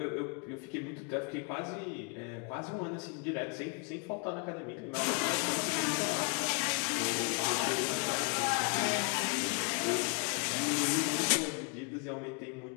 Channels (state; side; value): quieter; right; 38.1 dB